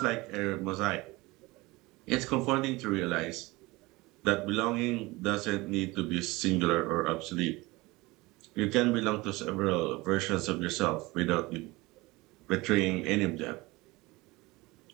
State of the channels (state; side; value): quieter; left; 22.0 dB